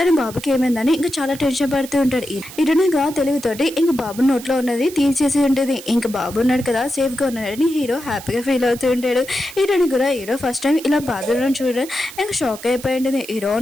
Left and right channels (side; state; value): right; noise; hiss, 15 dB below the sound